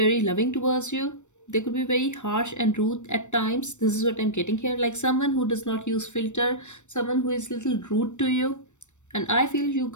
loving towards you. They could be very harsh and rude at times. This is what I'm getting here. Like someone who does not use filter, someone who is little rude to you. And I feel you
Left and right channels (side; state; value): right; late; 0.84 ms